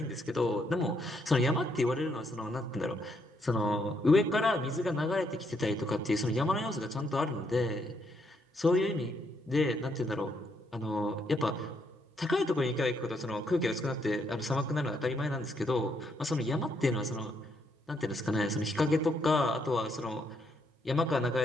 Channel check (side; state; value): both; normal; correlation 0.74